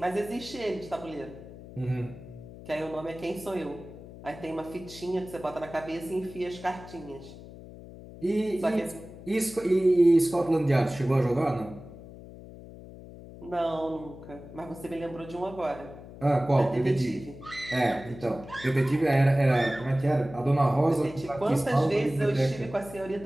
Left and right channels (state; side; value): noise; left; hum, 16 dB below the sound